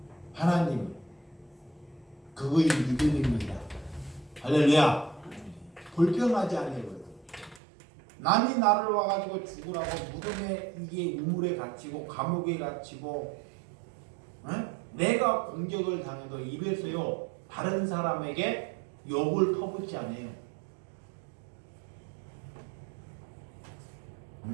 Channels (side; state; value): left; drops out; at 7.6 s